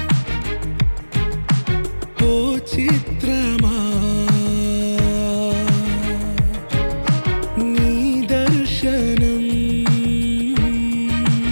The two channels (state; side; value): inverted; both; correlation -1.00